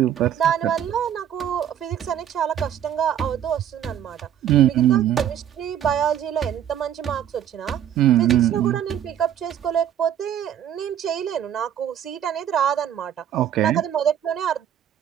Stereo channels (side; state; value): left; quieter; 10.0 dB